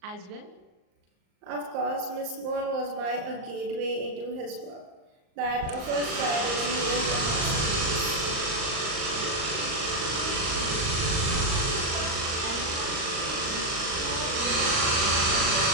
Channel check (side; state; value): left; late; 38 ms